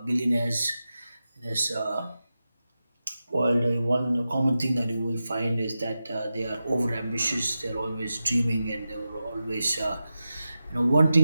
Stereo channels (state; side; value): inverted; both; correlation -0.92